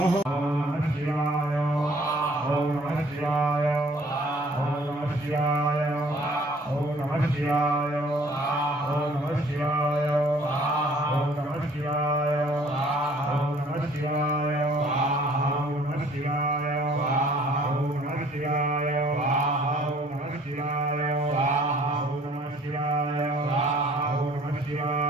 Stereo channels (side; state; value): both; normal; correlation 0.56